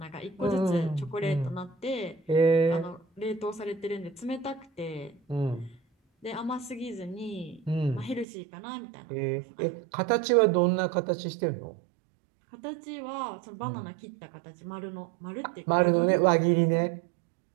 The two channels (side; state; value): left; drops out; at 8.2 s